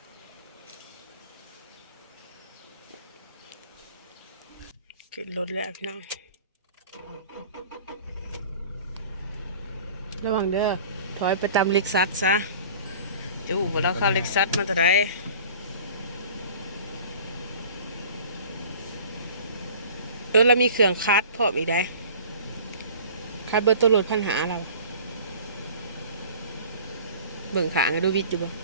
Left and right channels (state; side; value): inverted; both; correlation -0.44